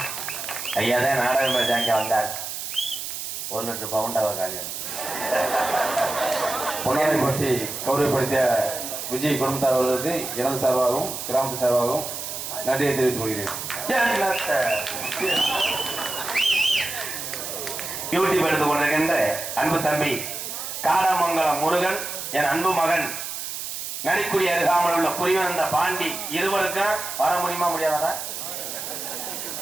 ஐயா தான் நாடகம் பேசாங்க வந்தார். 1 லிட்டர் பவுண்டாவ காலியம் பொன்னாடை பற்றி கௌரவப்படுத்திய விஜய் குடும்பத்தார் அவர்களுக்கு எனது சார்பாகவும் கிராமத்து சார்பாகவும் நன்றியை தெரிவித்துக் கொள்கிறேன். யூடியூப் எடுத்துக் கொண்டிருக்கின்ற அன்பு தம்பி காடமங்கலம் முருகன், என் அன்பு மகன் நரிக்குடி அருகாமல் உள்ள புரிவந்த பாண்டி இருவருக்கும் வர முடியுமா முடியாதா?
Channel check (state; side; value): noise; right; hiss, 6 dB below the sound